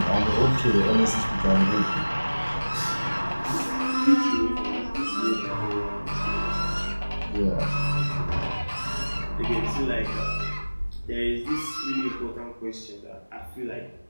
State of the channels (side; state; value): both; inverted; correlation -1.00